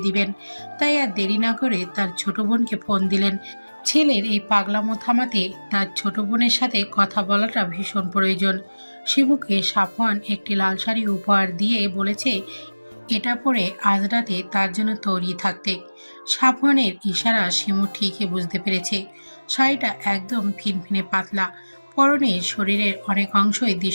দিবেন। তাই আর দেরি না করে তার ছোট বোনকে ফোন দিলেন। ছেলের এই পাগলামো থামাতে তার ছোট বোনের সাথে কথা বলাটা ভীষণ প্রয়োজন। শিমুকে সাফওয়ান একটি লাল শাড়ি উপহার দিয়ে বলেছে এটা পরে আজ রাতে তার জন্য তৈরি থাকতে। সাফওয়ানের ইশারা শিমু ঠিকই বুঝতে পেরেছে। শাড়িটা একদম ফিনফিনে পাতলা, পরনে শরীরের অনেক অংশই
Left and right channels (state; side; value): inverted; both; correlation -1.00